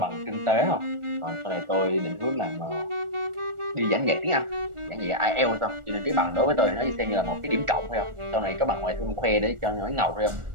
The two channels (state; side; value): late; left; 1.4 ms